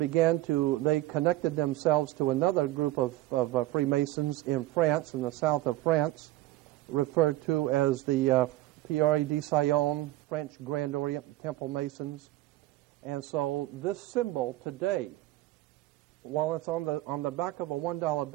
themselves to another group of Freemasons in France, in the south of France, referred to as the Pierre de Sion, French Grand Orient Temple Masons. And so this symbol today, while it's on the back of a $1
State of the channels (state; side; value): quieter; left; 16.8 dB